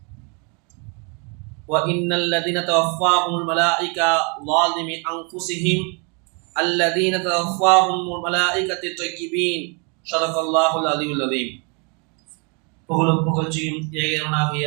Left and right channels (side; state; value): left; quieter; 34.4 dB